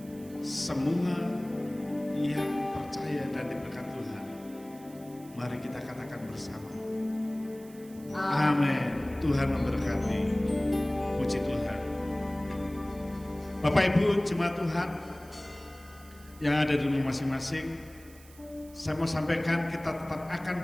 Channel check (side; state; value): right; noise; hiss, 23 dB below the sound